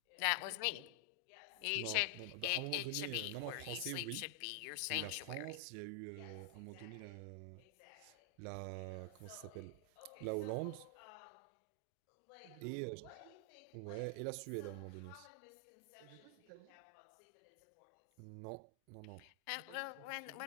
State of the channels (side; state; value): both; different; correlation 0.00